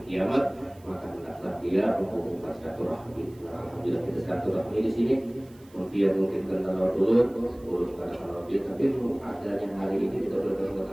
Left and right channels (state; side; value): noise; right; hiss, 28 dB below the sound